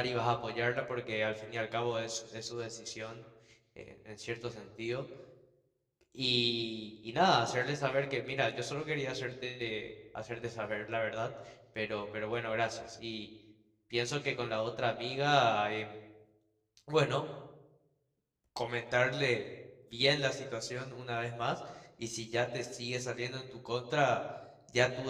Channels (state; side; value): identical; both; correlation 1.00